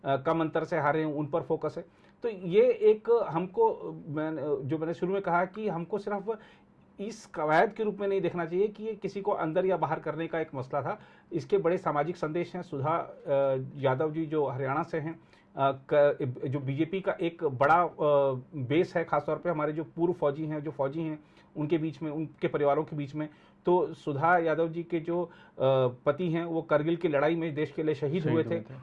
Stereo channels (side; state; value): both; identical; correlation 1.00